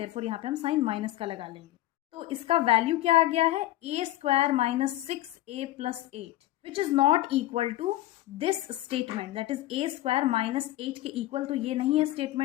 यहाँ पे हम साइन माइनस का लगा लेंगे। तो इसका वैल्यू क्या आ गया है, a² minus 6a plus 8 which is not equal to this statement, that is a² minus 8 के इक्वल तो ये नहीं है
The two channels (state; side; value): quieter; right; 15.4 dB